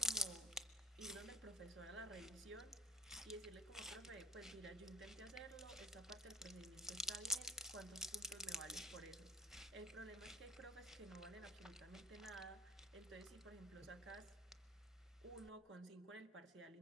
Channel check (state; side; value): normal; both; correlation 0.44